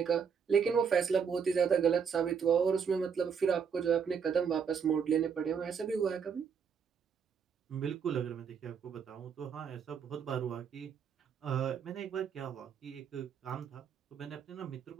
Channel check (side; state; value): left; quieter; 6.8 dB